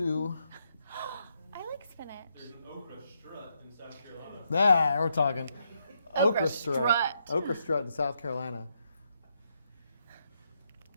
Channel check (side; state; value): both; inverted; correlation -0.79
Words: I like spinach. There's an okra strut in South Carolina. Ah, we're talking. Okra strut. strut. Okra strut in South Carolina.